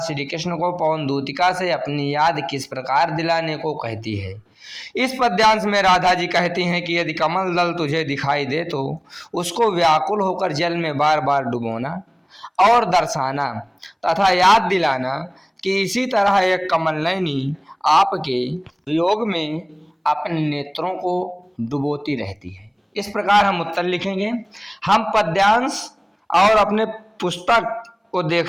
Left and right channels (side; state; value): both; identical; correlation 1.00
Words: कृष्ण को पवन दूतिका से अपनी याद किस प्रकार दिलाने को कहती है? इस पद्यांश में राधा जी कहती हैं कि यदि कमल दल तुझे दिखाई दे तो उसको व्याकुल होकर जल में बार बार डुबोना और दर्शाना तथा याद दिलाना कि इसी तरह एक कमल नयनी आपके वियोग में अपने नेत्रों को डुबोती रहती है। इस प्रकार हम उत्तर लिखेंगे। हम पद्यांश और अपने पुस्तक को